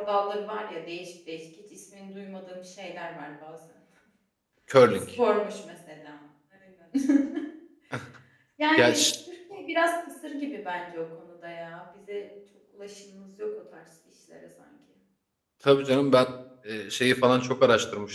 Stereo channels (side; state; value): both; identical; correlation 1.00